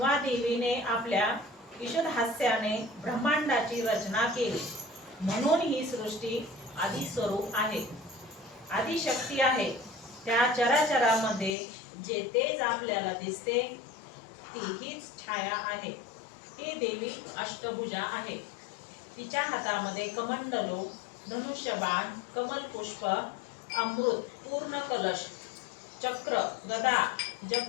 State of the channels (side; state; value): right; drops out; at 11.6 s